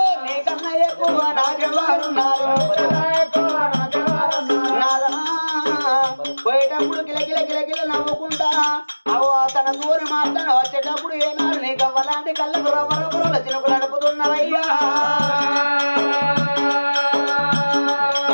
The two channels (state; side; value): inverted; both; correlation -1.00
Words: నీకన్నా ఎక్కువ నాకెవారున్నారు పోయేటప్పుడు కిలకిల కిలకిల నవ్వుకుంటా అవు తన దూరి మాట్లాడ వచ్చేటప్పుడు ఏనాడు నీ గవ్వలాంటి కళ్ళకు రవ్వరవ్వల చినుకులు నడుపుతున్నవయ్యా